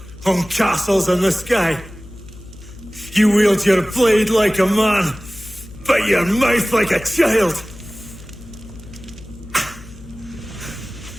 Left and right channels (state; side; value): noise; left; hum, 19 dB below the sound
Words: on castles in the sky. You wield your blade like a man, but your mouth like a child.